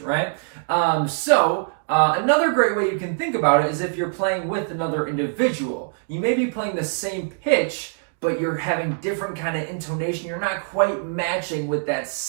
right? Another great way you can think about it is if you're playing with another individual. You may be playing the same pitch, but you're having different kind of intonation. You're not quite matching with that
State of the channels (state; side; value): silent; left; digital silence